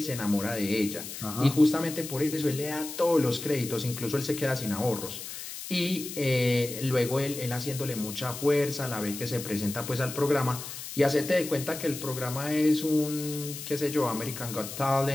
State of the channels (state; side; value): noise; left; hiss, 9 dB below the sound